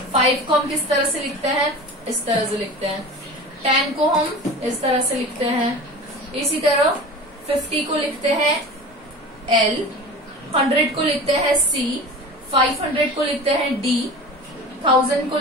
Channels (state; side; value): normal; both; correlation 0.35